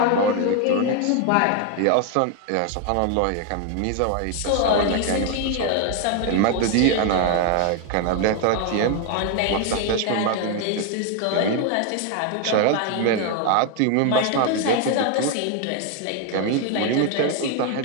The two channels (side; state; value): both; different; correlation 0.01